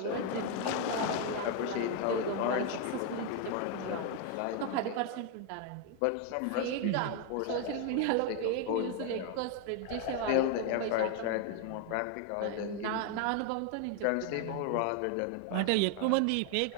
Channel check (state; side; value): different; both; correlation 0.01